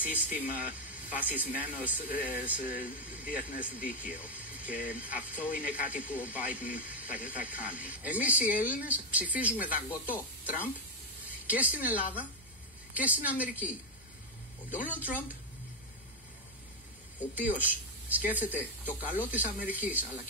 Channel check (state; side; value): normal; both; correlation 0.05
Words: σύστημα βασισμένο σε διεθνές δίκαιο. Και αυτό είναι κάτι που ο Biden θα κάνει. Εμείς οι Έλληνες ψηφίζουμε δαγκωτό Τραμπ και στην Ελλάδα και στην Αμερική. Ο Ντόναλντ Τραμπ, ο οποίος σκέφτεται το καλό της Αμερικής αλλά